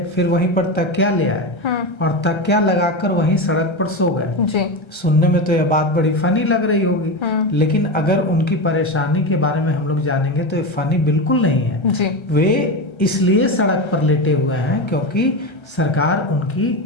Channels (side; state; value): right; late; 1.3 ms